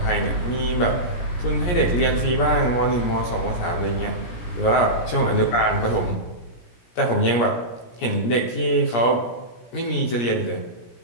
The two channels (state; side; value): late; right; 17 ms